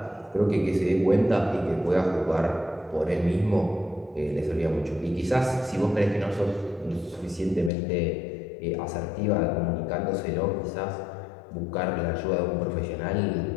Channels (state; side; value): drops out; right; at 7.7 s